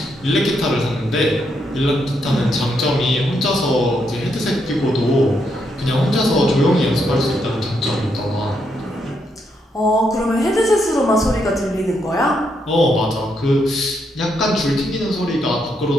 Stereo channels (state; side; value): normal; both; correlation 0.78